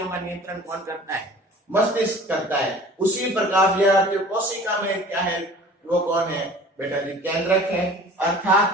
का नियंत्रण कौन करता है? मस्तिष्क करता है। उसी प्रकार विद्यार्थियों कोशिका में क्या है? वो कौन है बेटा जी? केंद्रक है।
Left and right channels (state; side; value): normal; both; correlation 0.45